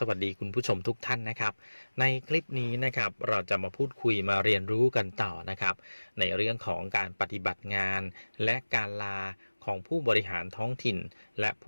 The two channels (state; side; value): inverted; both; correlation -1.00